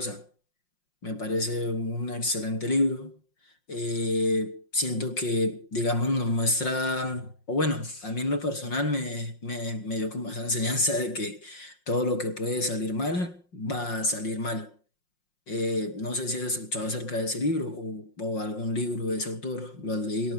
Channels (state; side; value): late; right; 5.6 ms